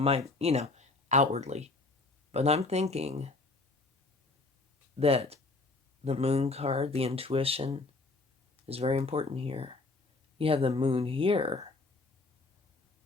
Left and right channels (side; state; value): right; quieter; 3.4 dB